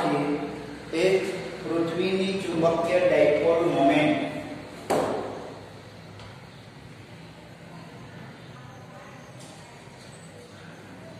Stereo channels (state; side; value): identical; both; correlation 1.00